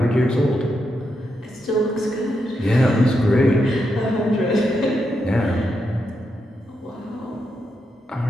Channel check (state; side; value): normal; both; correlation 0.84